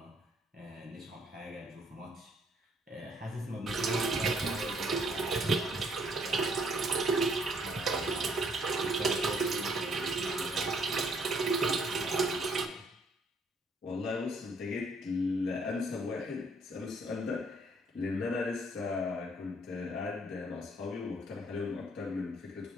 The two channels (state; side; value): normal; both; correlation 0.66